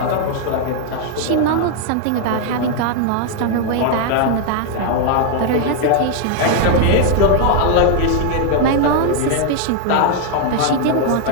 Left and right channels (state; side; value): different; both; correlation 0.00